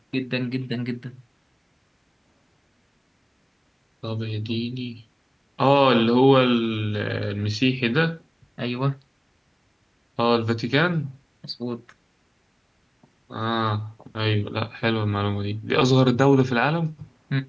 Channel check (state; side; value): identical; both; correlation 1.00